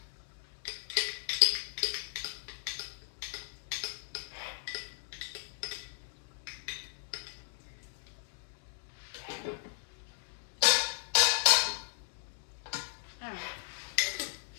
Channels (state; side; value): silent; right; 54 dB below the other